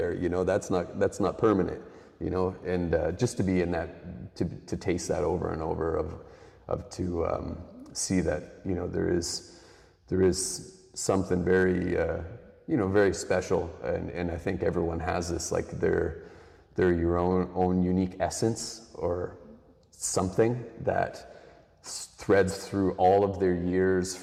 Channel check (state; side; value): identical; both; correlation 1.00